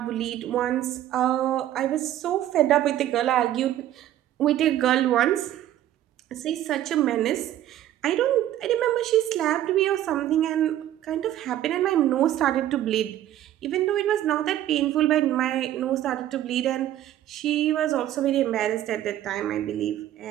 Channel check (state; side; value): quieter; left; 12.6 dB